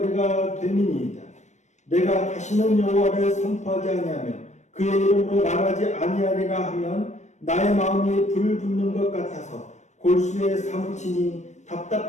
됨이니이다. 내가 다시는 여호와를 선포하지 아니하며 그의 이름으로 말하지 아니하리라 하면 나의 마음이 불붙는 것 같아서 골수에 사무치니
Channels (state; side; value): late; right; 0.34 ms